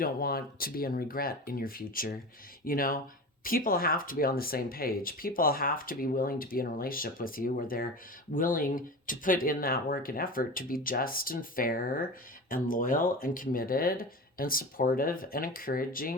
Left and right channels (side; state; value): both; normal; correlation 0.30